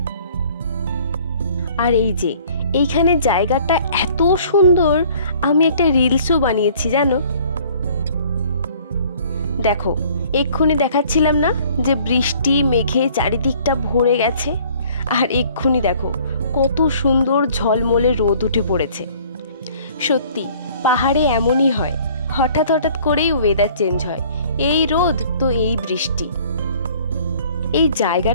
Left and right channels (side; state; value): both; inverted; correlation -0.54